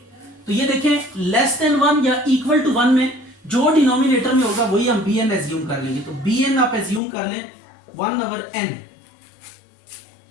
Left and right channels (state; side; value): drops out; right; at 7.0 s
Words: तो ये देखें लेस देन 1 या इक्वल टू 1 में जो डिनोमिनेटर में होगा वही हम bn एज्यूम कर लेंगे। तो bn आप एज्यूम कर लें 1 ओवर n,